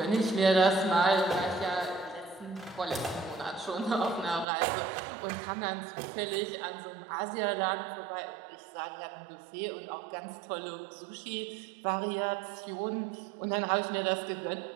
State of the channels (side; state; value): left; drops out; at 4.5 s